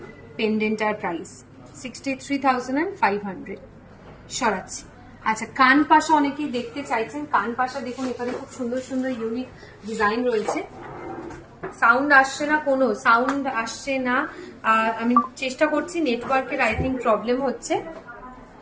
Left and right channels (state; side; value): identical; both; correlation 1.00